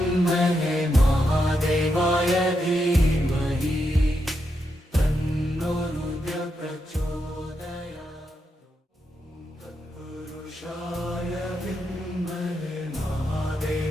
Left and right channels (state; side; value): normal; both; correlation 0.83